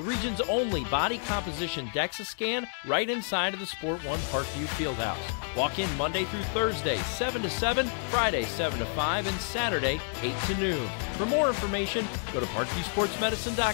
region's only body composition DEXA scan right inside of the Sport One Parkview Fieldhouse. Walk in Monday through Thursday, 7 to 7, Friday, 7 to 5, and Saturday, 8 to noon. For more information, go to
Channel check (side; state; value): right; silent; 58 dB below the other